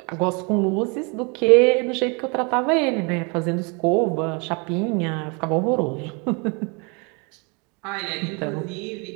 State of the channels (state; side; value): quieter; left; 32.2 dB